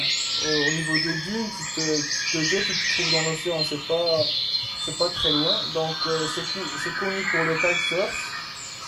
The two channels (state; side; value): identical; both; correlation 1.00